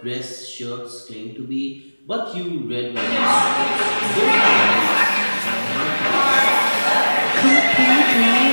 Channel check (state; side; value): inverted; both; correlation -1.00